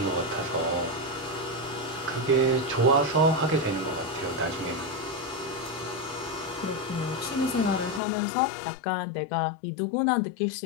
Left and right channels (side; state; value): right; drops out; at 8.0 s